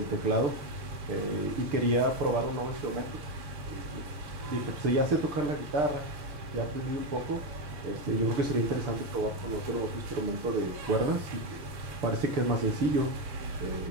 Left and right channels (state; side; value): late; left; 6.8 ms